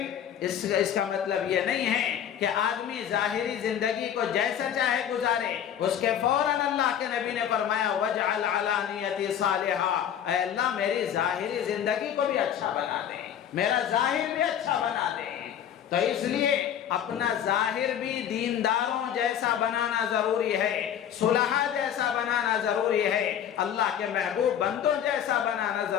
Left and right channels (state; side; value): quieter; right; 9.5 dB